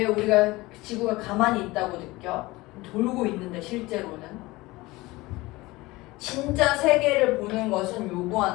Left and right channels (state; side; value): quieter; right; 20.7 dB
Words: 우리가 지구가 가만히 있다고 느껴? 돌고 있는데 실제로는 진짜 세계를 보는 것은